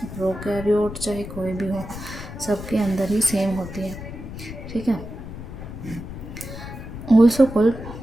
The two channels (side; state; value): left; noise; rumble, 10 dB below the sound